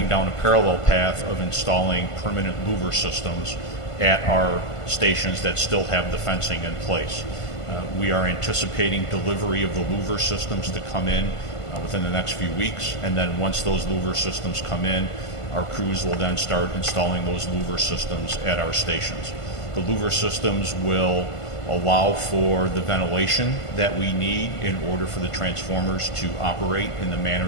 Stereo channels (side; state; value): right; late; 1.5 ms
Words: down a parallel path of installing permanent louver systems at our stations that still have the fencing in place. We are anticipating delivery of the louver systems to come in within the next few weeks, and then once those louver systems come in, our crews will then start installing those louver systems at our stations. The louver systems will allow for the ventilation that we need in order for the transformers to operate in the manner